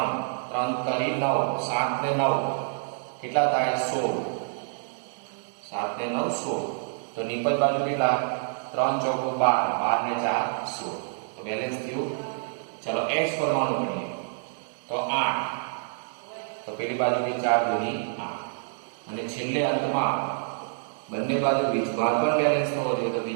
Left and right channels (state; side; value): silent; left; digital silence